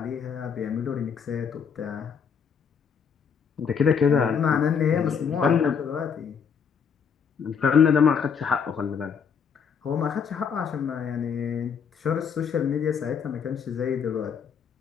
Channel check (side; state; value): right; quieter; 6.7 dB